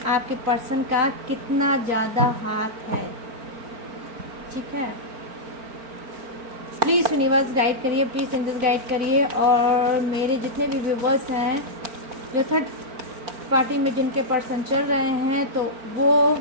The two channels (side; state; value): left; late; 4.4 ms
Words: पर्सन का कितना ज़्यादा हाथ है। ठीक है, प्लीज़ यूनिवर्स गाइड करिए, प्लीज़ एंजल्स गाइड करिए। और मेरे जितने भी व्यूवर्स हैं जो थर्ड पार्टी में जिनके पर्सन चल रहे हैं, तो वो